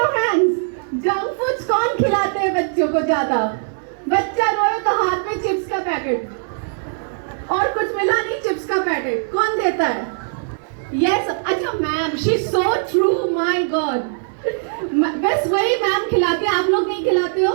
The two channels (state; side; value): silent; left; 66 dB below the other